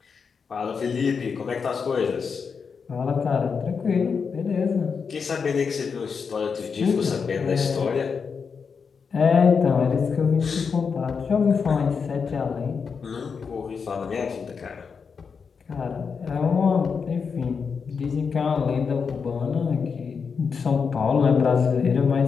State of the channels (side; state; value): right; quieter; 5.8 dB